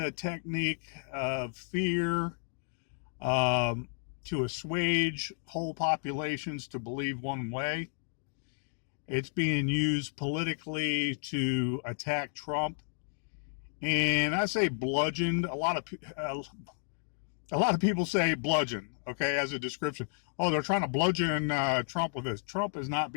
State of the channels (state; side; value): silent; right; digital silence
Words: technique of fear to assuage whole populations to believe one way. It's being used politically to attack Trump, and I say bludgeoned. A lot of people say bludgeon, okay, as a description. Oh, they're trying to bludgeon Trump with this. Trump is not